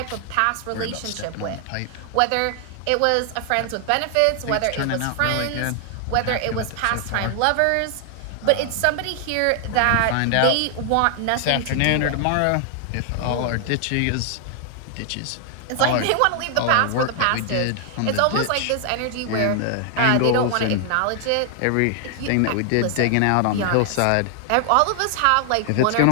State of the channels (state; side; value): different; both; correlation 0.00